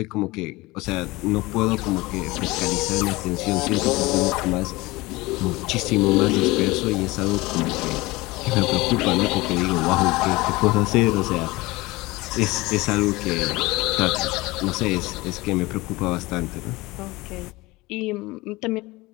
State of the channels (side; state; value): right; quieter; 21.5 dB